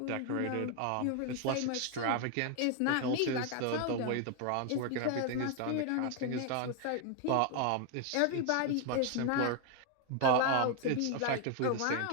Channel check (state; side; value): different; both; correlation 0.01